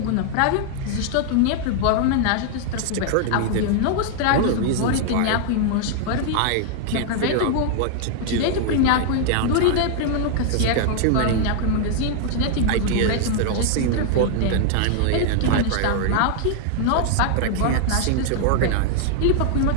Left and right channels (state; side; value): different; both; correlation 0.00